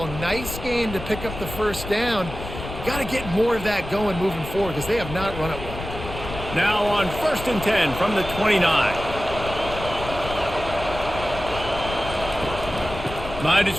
Nice game to pick up the first down. Got to get more of that going moving forward because they have not run it well. Now on 1st and 10 from the 29. Might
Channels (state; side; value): noise; left; rumble, 10 dB below the sound